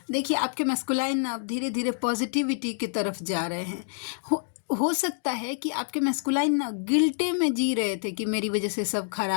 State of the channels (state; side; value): silent; right; digital silence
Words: देखिए आपके मैस्कुलाइन अब धीरे धीरे पॉजिटिविटी की तरफ जा रहे हैं। हो सकता है कि आपके मैस्कुलाइन ना गिल्टे में जी रहे थे कि मेरी वजह से सब